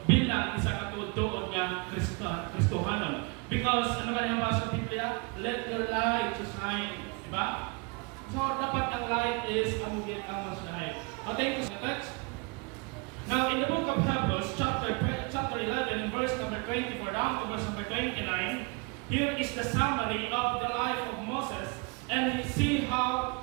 bilang isa katutuon nga Kristohanon. Because ano ba yung sa Biblia? Let your light shine, diba? So dapat ang light is ang mas shine. Thank you for the text. Now in the book of Hebrews, chapter 11, verse number 24 down to verse number 29, here is the summary of the life of Moses, and see how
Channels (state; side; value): quieter; left; 30.7 dB